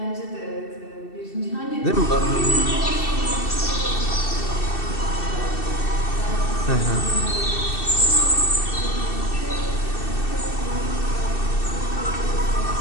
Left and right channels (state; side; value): late; right; 2.7 ms